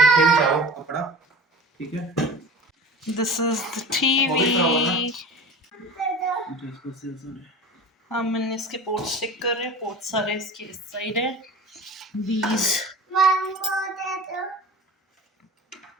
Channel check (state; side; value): normal; both; correlation 0.36